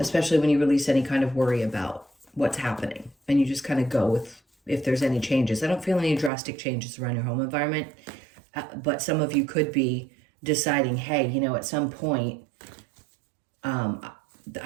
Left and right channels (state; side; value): drops out; left; at 6.3 s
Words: when you release any kind of worry about what's happening. And you just kind of go with if there's any changes. I don't feel any drastic changes around your home environment, but some of you could be deciding, hey, at some point,